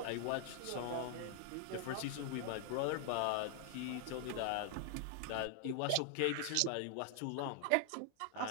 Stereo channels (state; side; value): different; both; correlation 0.00